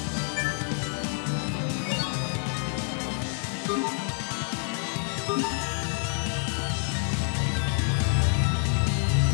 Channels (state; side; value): silent; right; 57 dB below the other